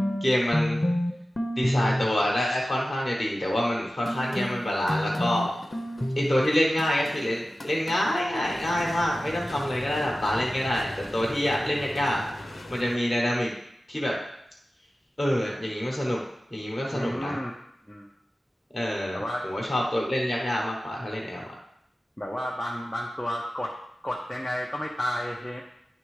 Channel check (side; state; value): both; normal; correlation 0.95